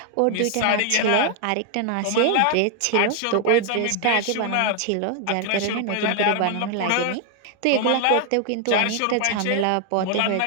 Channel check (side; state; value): both; different; correlation 0.00